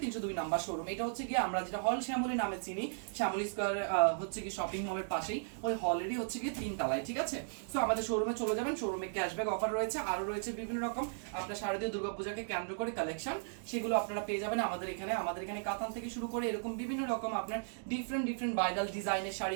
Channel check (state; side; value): silent; left; digital silence